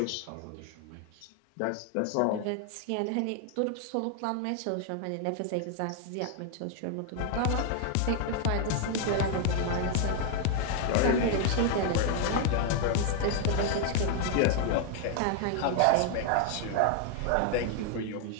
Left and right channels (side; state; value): both; different; correlation 0.00